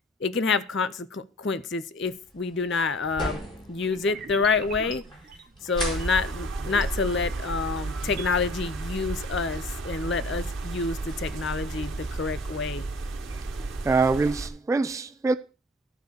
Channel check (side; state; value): both; normal; correlation 0.47